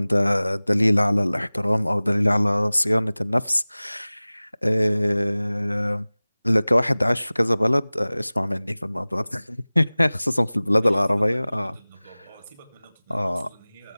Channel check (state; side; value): inverted; both; correlation -0.99